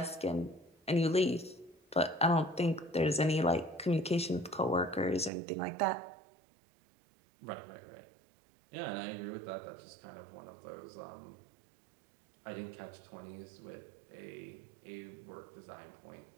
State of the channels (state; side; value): drops out; left; at 5.3 s